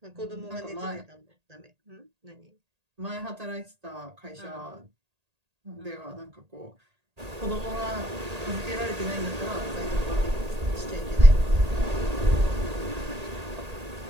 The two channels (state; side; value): late; left; 1.8 ms